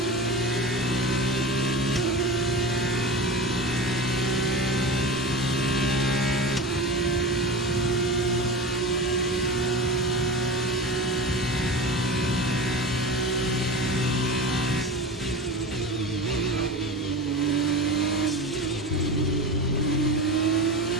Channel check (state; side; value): normal; both; correlation 0.29